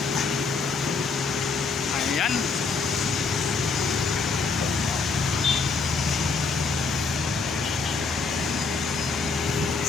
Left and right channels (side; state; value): right; quieter; 4.5 dB